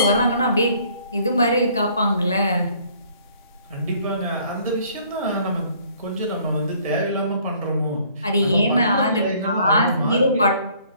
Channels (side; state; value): both; inverted; correlation -0.60